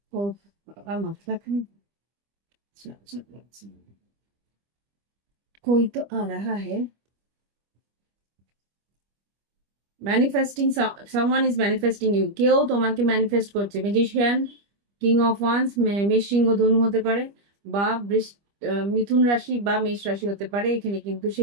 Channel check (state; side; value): late; left; 25 ms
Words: ও বাবা, মাথা খান, कोई तो आ रहा है। Manifesting, someone is manifesting you, কেউ তোমাকে ম্যানিফেস্ট করছে। ম্যাজিশিয়ান, কিং অফ ওয়ান্স, মেষ সিংহ ধনু হতে পারে, বা মিথুন রাশি বা মেষ রাশি হতে পারে। এখানে কিন্তু